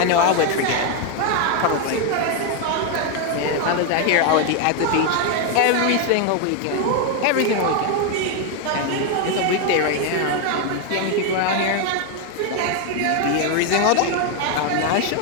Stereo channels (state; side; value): different; both; correlation 0.01